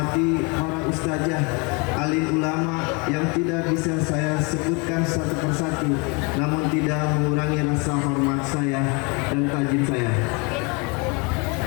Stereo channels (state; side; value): quieter; right; 30.8 dB